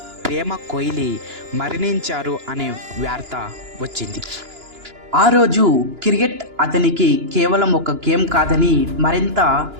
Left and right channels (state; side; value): late; left; 2.9 ms